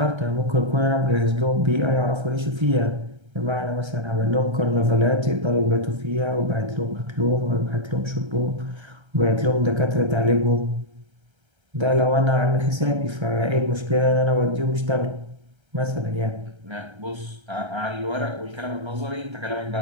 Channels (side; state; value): left; late; 1.3 ms